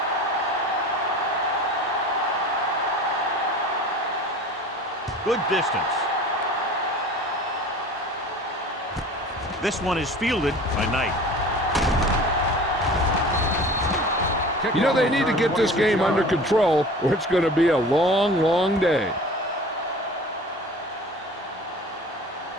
Good distance. This one is fielded by Knight. You know, they need to get this game under control, or it's going to be a long, long day.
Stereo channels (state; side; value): normal; both; correlation 0.41